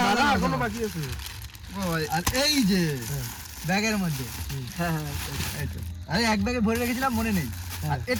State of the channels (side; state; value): both; identical; correlation 1.00